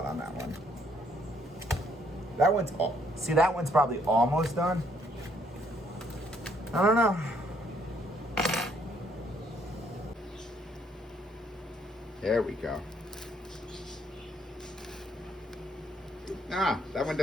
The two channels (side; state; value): both; normal; correlation 0.68